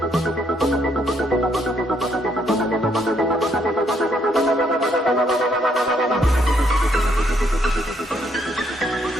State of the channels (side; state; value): both; normal; correlation 0.71